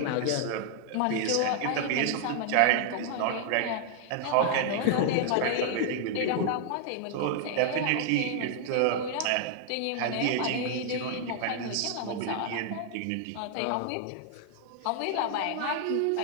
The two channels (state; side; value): different; both; correlation 0.00